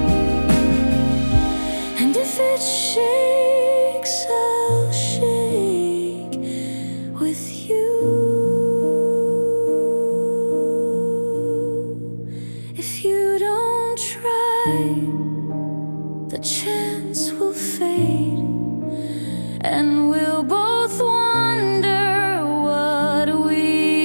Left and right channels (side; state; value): both; inverted; correlation -1.00